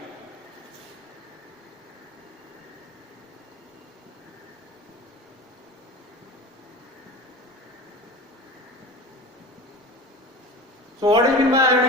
So what do you mean by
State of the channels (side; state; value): both; normal; correlation 0.33